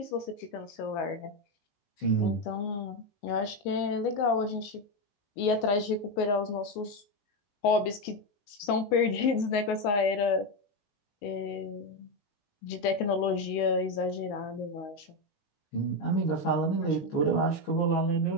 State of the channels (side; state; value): right; late; 20 ms